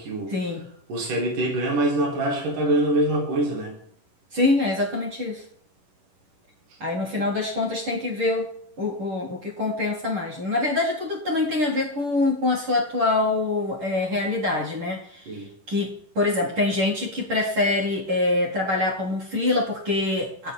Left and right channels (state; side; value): late; left; 10 ms